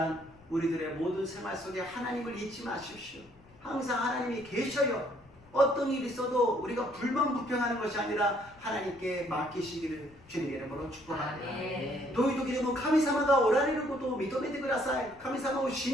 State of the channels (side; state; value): left; noise; rumble, 27 dB below the sound